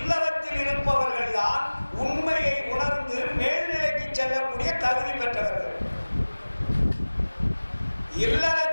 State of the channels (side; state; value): both; inverted; correlation -1.00